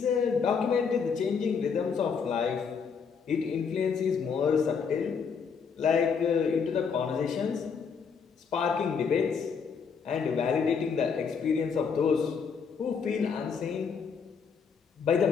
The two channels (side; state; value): right; quieter; 6.1 dB